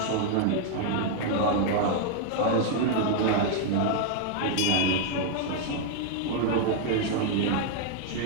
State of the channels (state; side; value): different; both; correlation 0.00